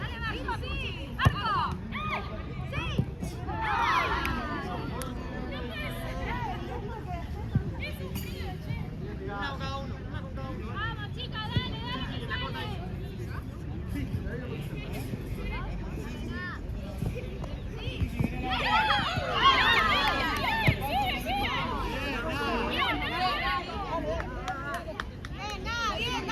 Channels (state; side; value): identical; both; correlation 1.00